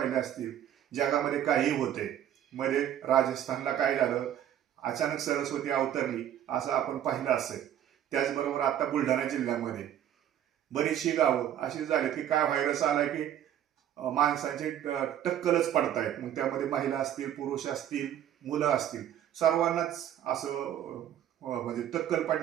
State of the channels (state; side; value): quieter; left; 10.7 dB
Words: असतील, जगामध्ये काही होते. मध्ये राजस्थानला काय झालं, अचानक सरस्वती अवतरली असं आपण पाहिलं असेल. त्याचबरोबर आता बुलढाणा जिल्ह्यामध्ये बरीचशी गावं अशी झाली की काय व्हायरस आलाय की माणसांचे टक्कलच पडतायत. मग त्यामध्ये महिला असतील, पुरुष असतील, मुलं असतील, सर्वांनाच असं म्हणजे टक्कल